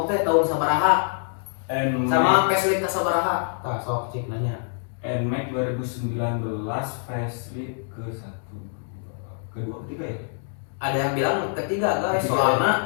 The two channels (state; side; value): silent; right; digital silence